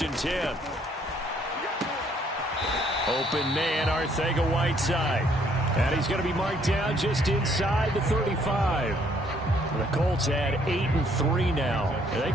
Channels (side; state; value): both; normal; correlation 0.66